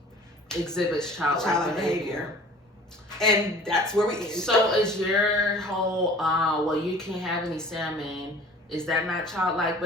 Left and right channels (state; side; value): normal; both; correlation 0.46